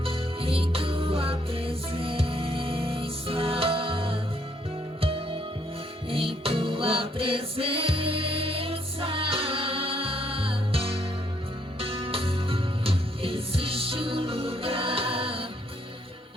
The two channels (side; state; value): both; normal; correlation 0.70